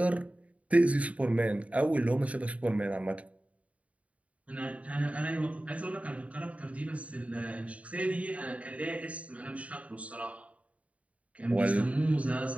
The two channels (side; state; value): left; late; 0.066 ms